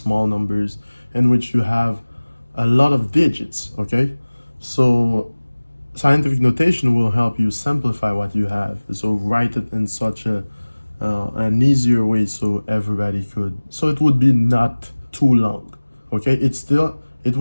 numbers in which you have a lot of digits, okay? So scientific notation will help you simplify what you have. So write it in such an easier way so everybody could, so it would be not too long, okay? It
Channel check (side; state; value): both; inverted; correlation -1.00